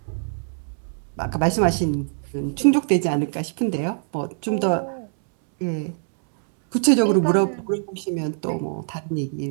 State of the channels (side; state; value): left; silent; 63 dB below the other